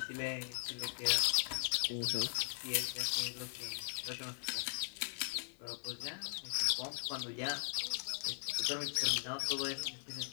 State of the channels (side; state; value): right; silent; digital silence